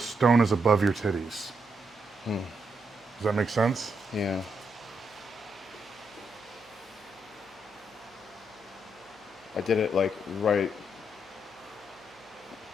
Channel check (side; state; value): left; noise; hum, 29 dB below the sound